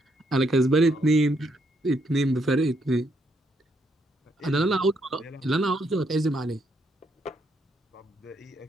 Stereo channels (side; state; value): both; normal; correlation 0.75